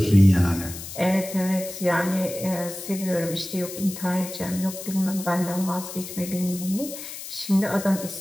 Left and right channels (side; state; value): left; noise; hiss, 11 dB below the sound